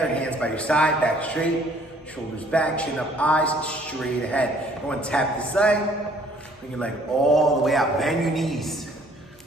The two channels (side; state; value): both; normal; correlation 0.59